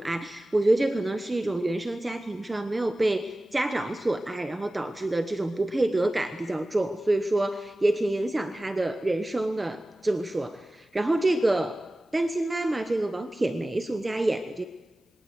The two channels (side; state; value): both; normal; correlation 0.97